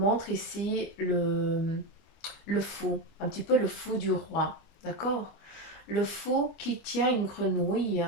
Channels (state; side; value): late; right; 25 ms